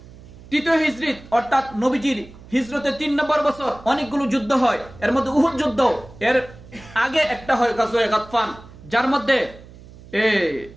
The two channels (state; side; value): noise; right; hum, 20 dB below the sound